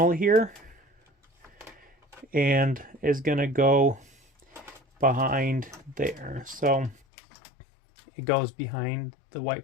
here, and is gonna go behind there. So it goes behind the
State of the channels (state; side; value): drops out; right; at 7.0 s